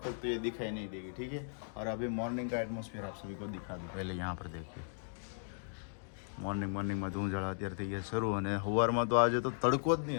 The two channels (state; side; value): silent; right; digital silence